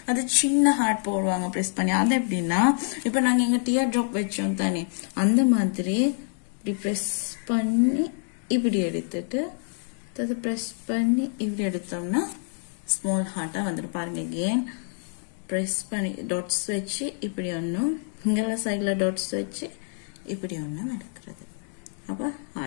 அது சின்ன ஹார்ட் போடுவாங்க ப்ரெஸ் பண்ணி. அது எப்படின்னா இப்போ நாங்கள் எங்கள் டியர் ட்ராப் வச்சோம் தானே அந்த மாதிரி இப்படி ப்ரெஸ் பண்ணி இப்படி எடுத்துட்டு அதை ப்ரெஸ் பண்ணி இப்படி எடுத்தோம்னா ஸ்மால் ஹார்ட்டாக வந்துடும். பாருங்க அகெயின் ப்ரெஸ் பண்ணி டாட்ஸ் வச்சு இப்படி ஒன்றும் இங்கெல்லாம் சைடில் டாட்ஸ் வச்சு இப்படி ஒன்றும் எடுக்கிறது. அப்போ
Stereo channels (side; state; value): right; silent; 56 dB below the other